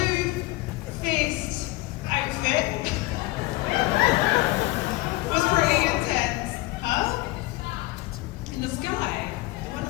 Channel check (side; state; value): right; quieter; 19.7 dB